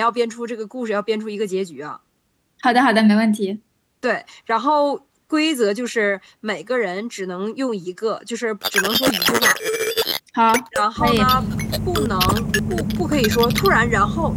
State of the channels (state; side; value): identical; both; correlation 1.00